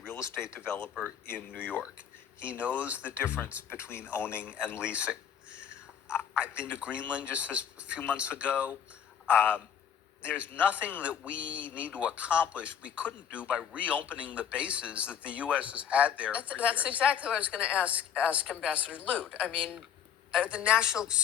estate developer in New York. He knows the difference between owning and leasing. I've been to Greenland just a few months ago. There's nothing that we need to accomplish we couldn't do by reopening the bases that the U.S. has had there for That's years. exactly what I was going to ask Ambassador Lute. I mean, the national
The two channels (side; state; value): right; quieter; 8.7 dB